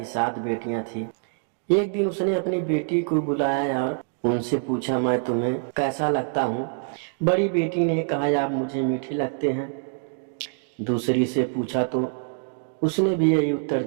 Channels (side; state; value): left; silent; digital silence